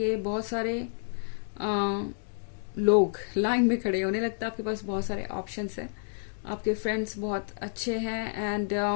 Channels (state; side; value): silent; right; 58 dB below the other